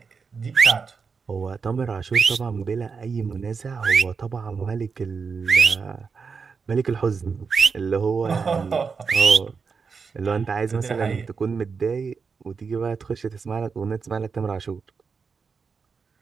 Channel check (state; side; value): quieter; left; 5.4 dB